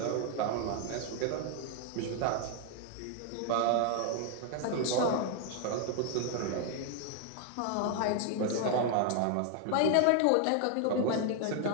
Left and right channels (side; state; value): both; different; correlation 0.00